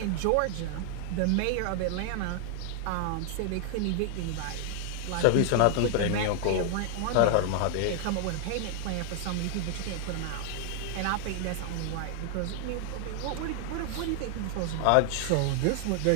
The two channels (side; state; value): both; different; correlation 0.00